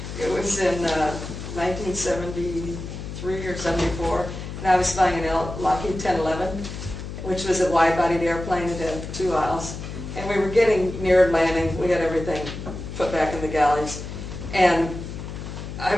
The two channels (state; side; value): noise; left; hum, 8 dB below the sound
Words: It was in 1973 or 74, and I was flying an Lockheed 1011, which was a wide-bodied airplane. It had 2 aisles, and we were getting near landing. We had everything put back in the galleys, and I